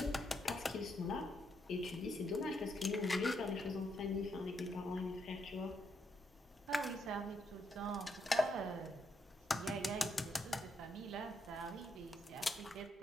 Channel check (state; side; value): normal; both; correlation 0.78